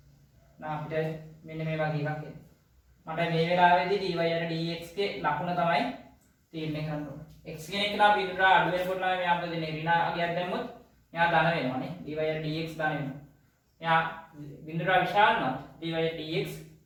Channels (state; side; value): identical; both; correlation 1.00